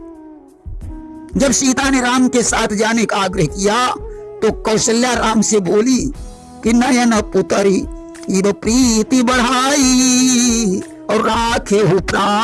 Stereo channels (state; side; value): identical; both; correlation 1.00